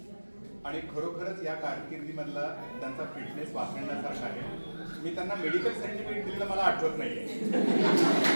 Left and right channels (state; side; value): inverted; both; correlation -1.00